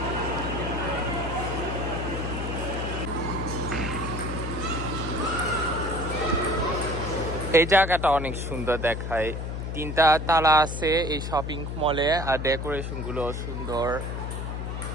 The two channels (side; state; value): left; noise; hum, 4 dB below the sound